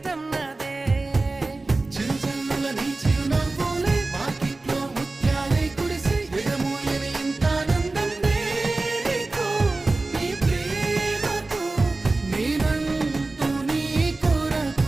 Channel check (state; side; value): quieter; left; 3.3 dB